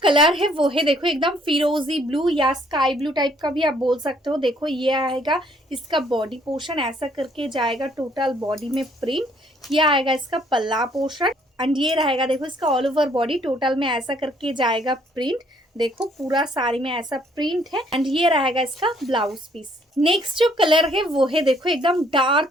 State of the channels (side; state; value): both; normal; correlation 0.64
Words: कलर है वो है देखो एकदम फिरोजी ब्लू या स्काई ब्लू टाइप का भी आप बोल सकते हो। देखो ये आएगा इसका बॉडी पोर्शन, ऐसा करके जाएगा टोटल बॉडी में प्रिंट। ये आएगा इसका पल्ला पोर्शन, एंड ये रहेगा देखो इसका ऑल ओवर बॉडी टोटल में ऐसा करके जाएगा प्रिंट। देखो पूरा साड़ी में ऐसा प्रिंट है, एंड ये रहेगा इसका ब्लाउज पीस। नेक्स्ट जो कलर है वो है देखो एकदम